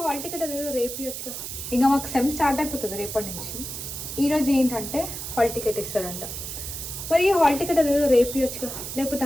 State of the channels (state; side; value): noise; right; hiss, 7 dB below the sound